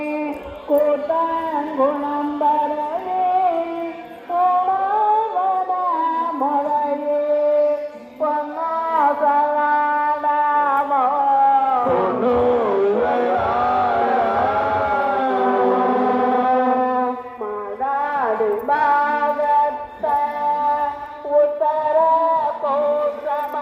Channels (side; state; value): both; identical; correlation 1.00